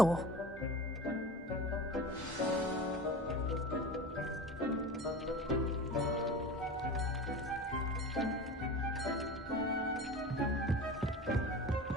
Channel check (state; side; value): normal; both; correlation 0.33